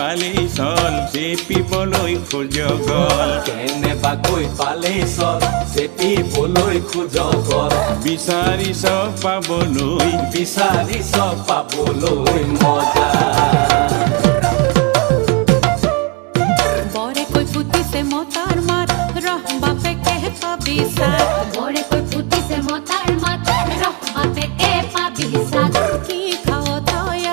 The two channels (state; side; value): quieter; left; 28.6 dB